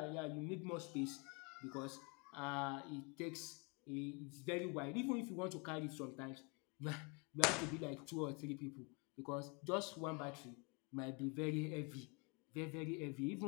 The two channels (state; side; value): quieter; right; 31.0 dB